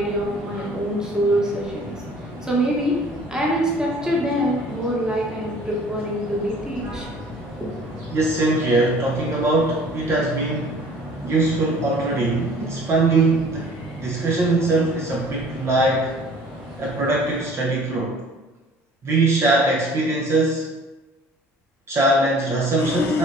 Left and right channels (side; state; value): both; normal; correlation 0.51